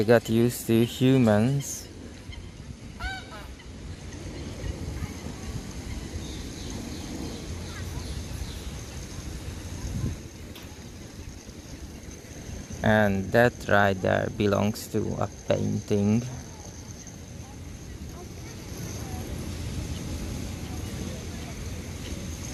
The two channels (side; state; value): both; identical; correlation 1.00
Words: got used to humans. And that right there belongs to a painting.